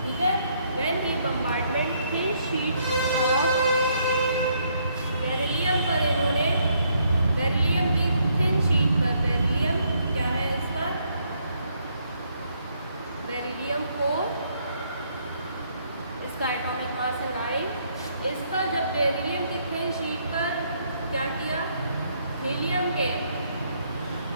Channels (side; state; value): both; inverted; correlation -0.71